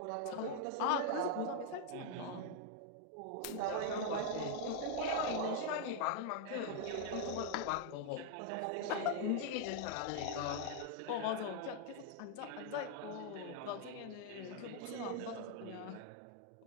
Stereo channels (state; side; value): different; both; correlation 0.00